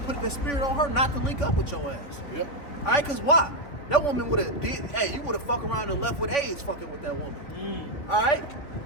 the spirit on her not to link up with your ass. Yep. All right, because why? That woman would have you would have fucked around and left with AIDS fucking with that woman. All right?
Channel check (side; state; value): right; late; 3.3 ms